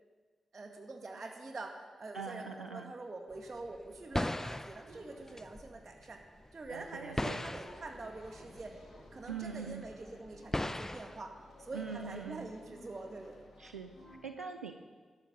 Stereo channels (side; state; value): both; normal; correlation 0.80